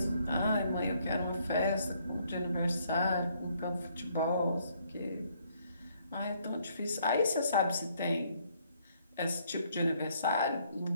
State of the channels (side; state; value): both; inverted; correlation -0.68